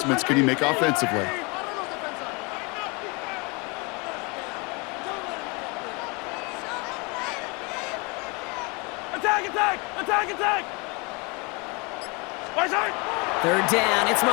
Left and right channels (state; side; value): quieter; right; 29.5 dB